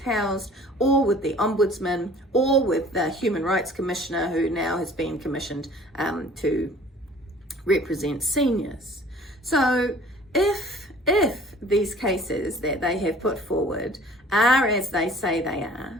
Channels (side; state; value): both; normal; correlation 0.50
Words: or with the Ombudsman, or with the Human Rights Commissioner, who now has been commissioned to represent seniors. So if these cases that they have put forward are as they say they